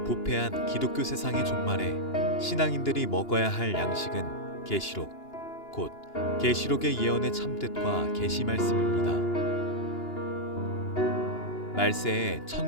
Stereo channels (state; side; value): late; right; 2.9 ms